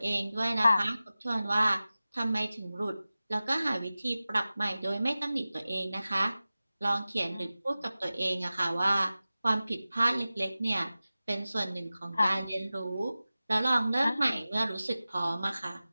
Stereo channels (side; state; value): both; inverted; correlation -0.96